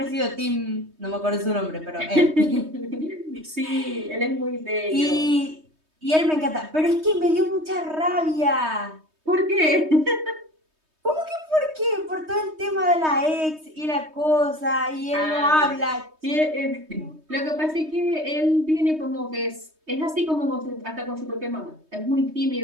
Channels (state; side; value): late; left; 3.2 ms